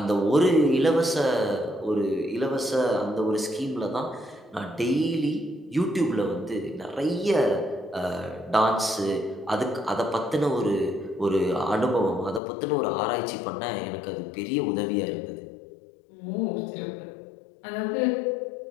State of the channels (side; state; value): right; drops out; at 12.4 s